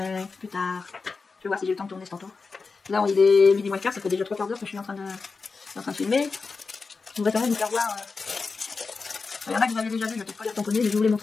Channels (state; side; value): quieter; right; 4.5 dB